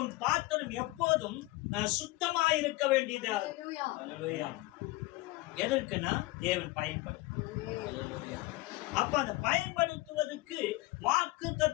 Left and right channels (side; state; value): right; quieter; 20.2 dB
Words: பாத்திரம் எப்போதும் சுத்தமா இருக்க வேண்டியது. அல்லேலூயா. எதற்குன்னா தேவன் பயன்படும். அப்ப அந்த பயன்படுத்துவதற்கு வாக்கு